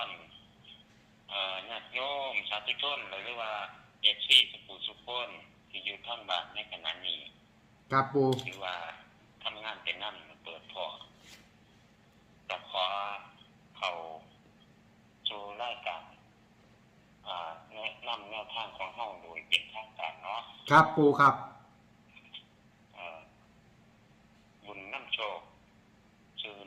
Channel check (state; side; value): identical; both; correlation 1.00